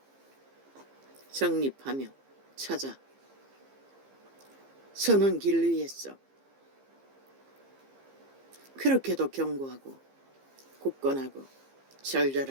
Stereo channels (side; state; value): left; late; 15 ms